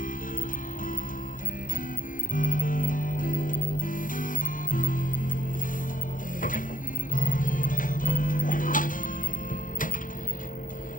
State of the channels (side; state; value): right; late; 0.39 ms